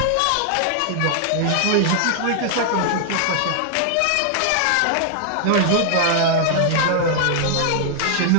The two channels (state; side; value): different; both; correlation 0.00